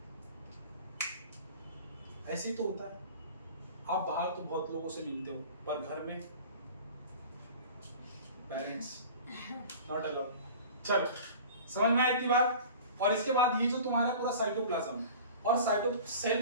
ऐसे ही तो होता है। आप बाहर तो बहुत लोगों से मिलते हो, पर घर में पेरेंट्स नॉट अलाउड। चलो, समझ में आई इतनी बात। और इसके बाद ये जो तुम्हारा पूरा साइटोप्लाज्म है, और साइटो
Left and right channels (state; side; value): inverted; both; correlation -0.40